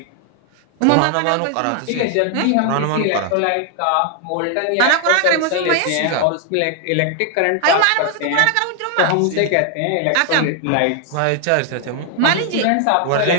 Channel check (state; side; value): different; both; correlation 0.00